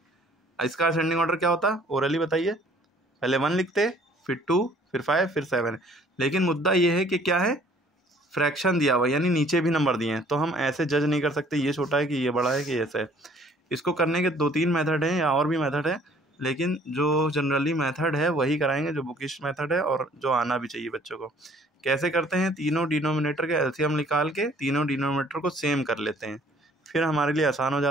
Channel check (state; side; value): normal; both; correlation 0.57